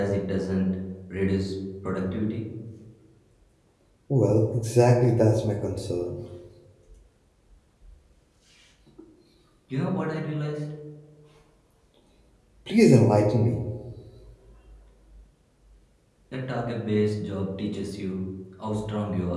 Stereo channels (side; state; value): both; identical; correlation 1.00